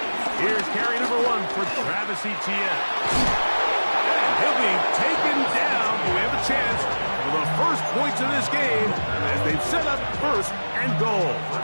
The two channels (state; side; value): inverted; both; correlation -1.00